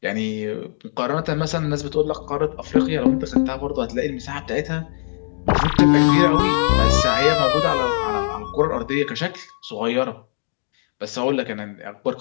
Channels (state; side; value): silent; right; digital silence